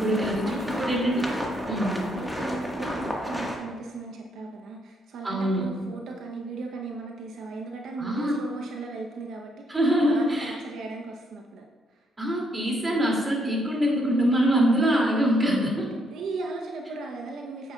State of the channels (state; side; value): normal; both; correlation 0.73